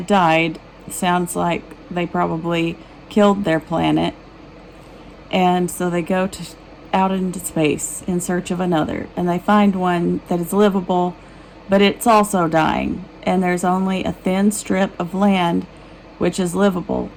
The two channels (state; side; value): identical; both; correlation 1.00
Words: died. Sounds like they probably killed their planet, and so they go out into space in search of another, and they find one that is livable, but it's also dying, and there's only a thin strip of land which is livable.